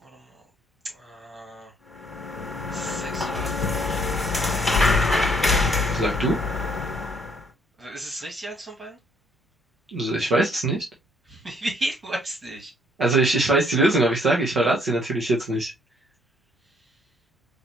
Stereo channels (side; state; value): both; normal; correlation 0.65